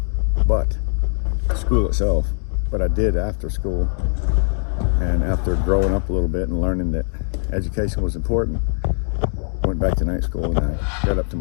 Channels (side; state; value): right; silent; digital silence